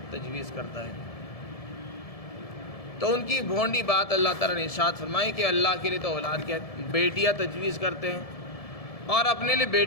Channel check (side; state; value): right; late; 1.7 ms